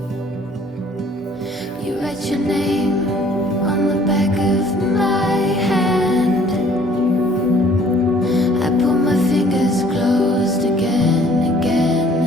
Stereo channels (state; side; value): normal; both; correlation 0.57